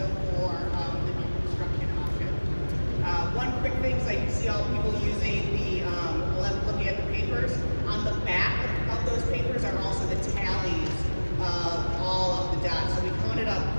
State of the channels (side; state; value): both; inverted; correlation -1.00